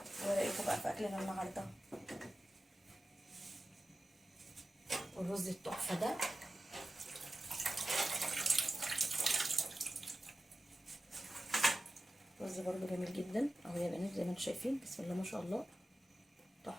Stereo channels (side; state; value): both; normal; correlation 0.94